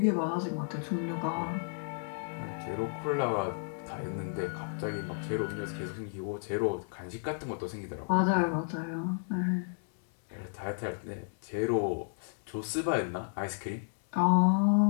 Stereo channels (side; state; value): right; silent; digital silence